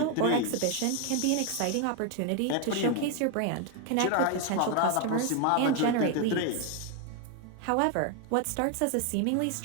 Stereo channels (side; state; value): both; different; correlation 0.01